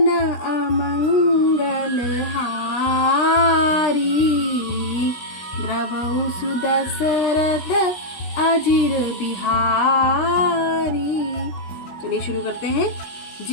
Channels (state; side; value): late; right; 16 ms